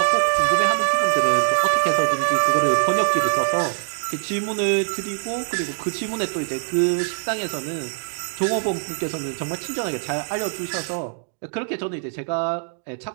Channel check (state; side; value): silent; left; digital silence